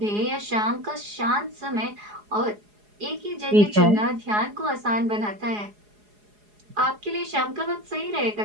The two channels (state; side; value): late; left; 4.8 ms